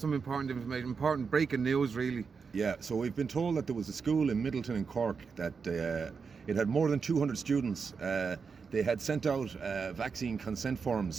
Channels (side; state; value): left; quieter; 5.5 dB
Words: important information, important breaking news, really. Yeah, so we've been told that there was a school in Middleton in Cork that it had more than 200 students. They had sent out vaccine consent